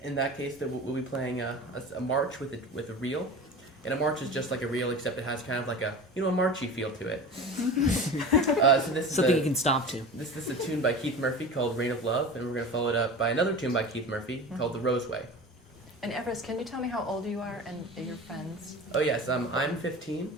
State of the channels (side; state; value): both; normal; correlation 0.33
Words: In that case, we'll be playing a march with a reel. And a march is just like a reel, except it has kind of like a marchy feel to it. So this is Something you can stomp to. This is a tune by Keith Murphy called Rain of Love, and we're going to follow it up by another tune by Keith Murphy called The Roseway. And Everest, can you tell me how old you are and your friends? Oh yes, I'm 15,